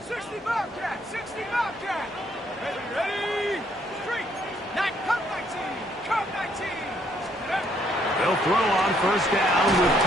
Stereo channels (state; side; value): normal; both; correlation 0.69